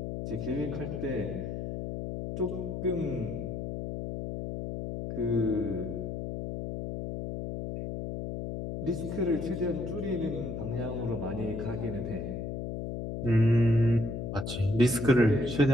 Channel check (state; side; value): noise; left; hum, 5 dB below the sound